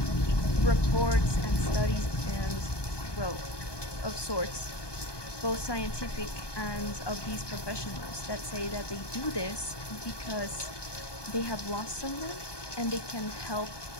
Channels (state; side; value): late; right; 1.2 ms